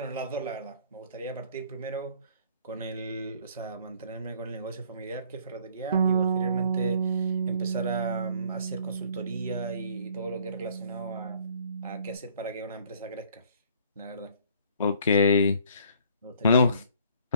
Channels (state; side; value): inverted; both; correlation -0.59